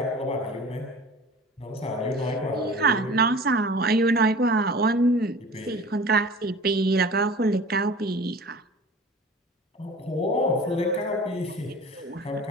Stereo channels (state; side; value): normal; both; correlation 0.41